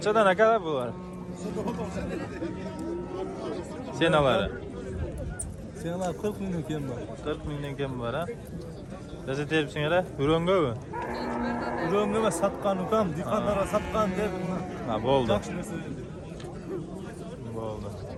aka bular? Senalari. Seneler 40 milyon kim var? 40 mingdan kam bor ha. Bizni teribsinglar, Urongami? Ürün ama satkan ukam, dikanlara satkan der. Ha, bo'ldi. Yaxshi narsa. Bo'ldi.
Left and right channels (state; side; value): identical; both; correlation 1.00